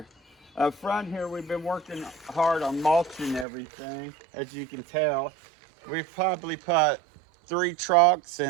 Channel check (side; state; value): left; drops out; at 3.5 s